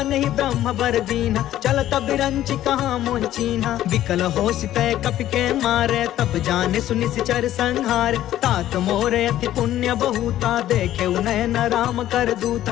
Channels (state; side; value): quieter; right; 13.0 dB